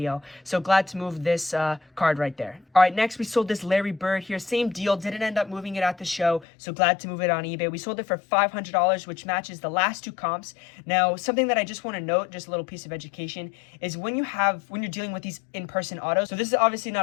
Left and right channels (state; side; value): drops out; right; at 6.5 s